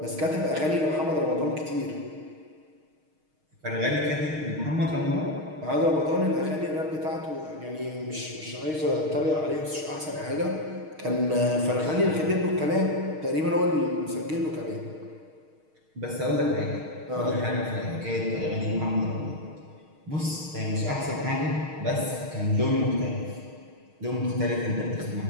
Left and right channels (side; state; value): left; late; 6.4 ms